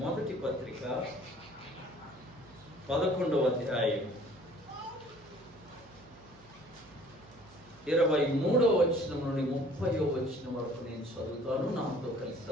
మొదటి పత్రిక 11వ అధ్యాయం 23వ వచనం నుండి 30వ వచనం వరకు నేను చదువుతాను. నాతో కలిసి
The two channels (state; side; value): noise; right; hum, 25 dB below the sound